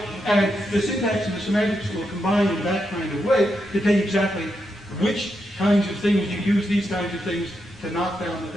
and the syntax and the semantics will combine in that kind of way to tell you exactly which kinds of things you use, these kinds of things to knock down the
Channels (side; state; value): both; normal; correlation 0.83